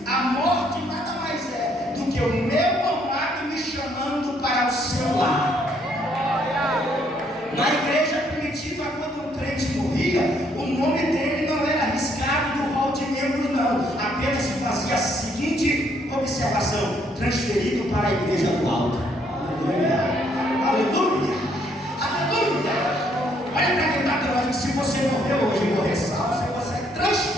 a morte nada mais é do que o meu amado me chamando para o seu lar. Na igreja primitiva, quando um crente morria, o nome dele não era arriscado do rol de membros, não. Apenas se fazia a seguinte observação: transferido para a igreja do alto. Aleluia! Aleluia! Aleluia! Olha para quem está falando: se você morreu hoje e morrer salvo, você é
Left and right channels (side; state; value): both; normal; correlation 0.69